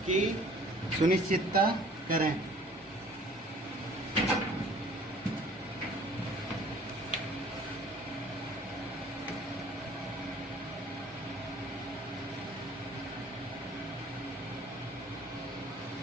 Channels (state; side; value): normal; both; correlation 0.52